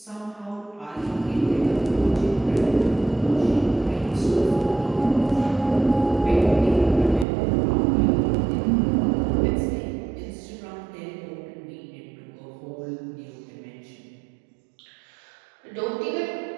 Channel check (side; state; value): left; drops out; at 7.2 s